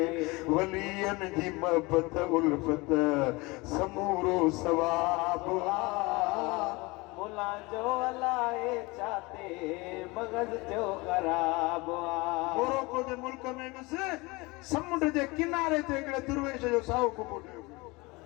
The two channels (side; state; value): right; quieter; 24.4 dB